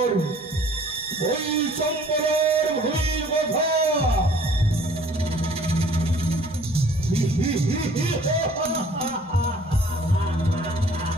ওই চম্পলের ভূমির কথা।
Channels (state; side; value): normal; both; correlation 0.55